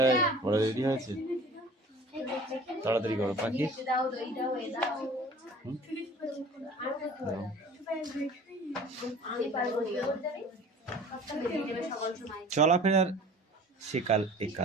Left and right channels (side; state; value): both; normal; correlation 0.45